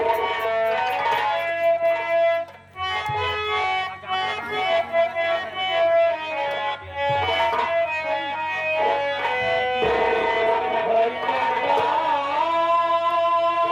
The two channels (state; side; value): identical; both; correlation 1.00